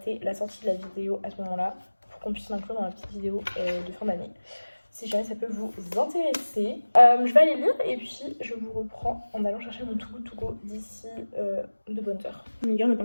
la sortie de la vidéo à ce moment-là pour qu'on puisse l'inclure dans la petite vidéo de fin d'année. Si jamais ça peut vous intéresser. Je vais aller lire et puis je vous reprends en allant chercher mon Too Good To Go d'ici de bonnes heures. Les gars, on est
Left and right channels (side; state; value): both; inverted; correlation -1.00